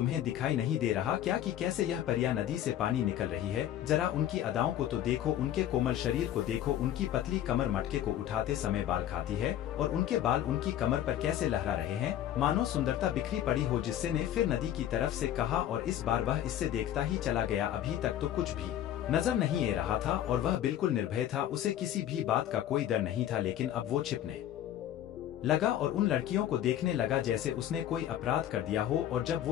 दिखाई नहीं दे रहा क्या कि कैसे यह परियां नदी से पानी निकल रही है? जरा उनकी अदाओं को तो देखो, उनके कोमल शरीर को देखो, उनकी पतली कमर मटके को उठाते समय बाल खाती है और उनके बाल उनकी कमर पर कैसे लहरा रहे हैं, मानो सुंदरता बिखरी पड़ी हो। जिससे ने फिर नदी की तरफ से कहा और इस बार वह इससे देखता ही चला गया। अभी तक तो कुछ भी नजर नहीं आ रहा था और वह बिल्कुल निर्भय था, उसे किसी भी बात का कोई डर नहीं था। लेकिन अब वो छिपने लगा और उन लड़कियों को देखने लगा जैसे उसने कोई अपराध कर दिया हो। और जब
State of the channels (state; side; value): quieter; right; 11.5 dB